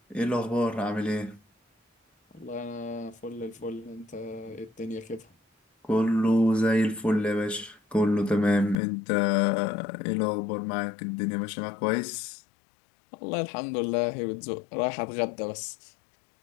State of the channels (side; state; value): right; drops out; at 8.8 s